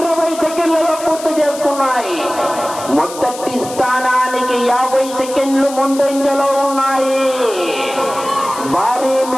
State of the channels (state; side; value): noise; left; hiss, 13 dB below the sound